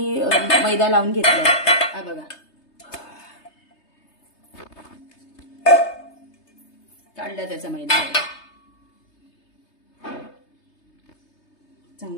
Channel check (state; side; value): late; right; 3.3 ms